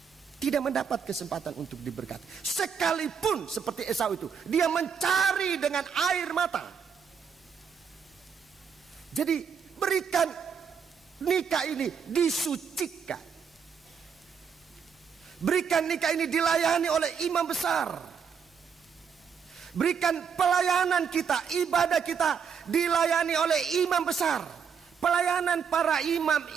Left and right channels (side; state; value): left; quieter; 6.8 dB